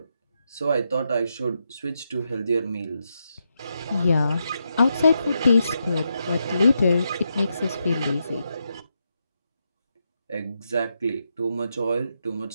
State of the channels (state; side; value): inverted; both; correlation -0.83